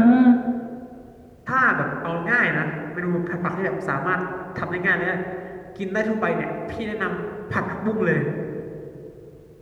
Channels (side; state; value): both; identical; correlation 1.00